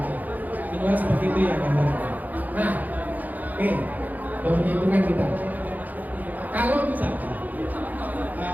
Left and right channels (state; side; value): late; left; 0.081 ms